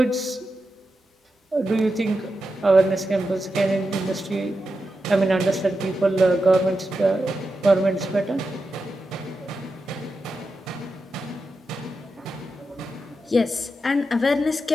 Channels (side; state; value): both; normal; correlation 0.89